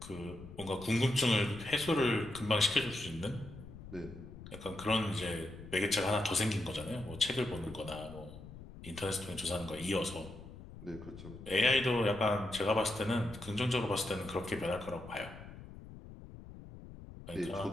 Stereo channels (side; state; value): left; noise; rumble, 14 dB below the sound